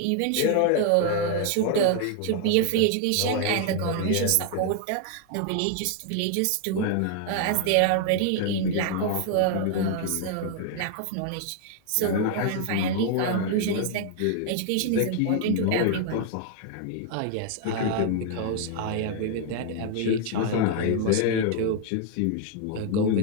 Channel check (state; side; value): different; both; correlation 0.00